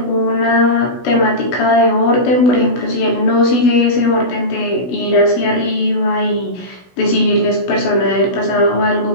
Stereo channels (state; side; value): late; right; 16 ms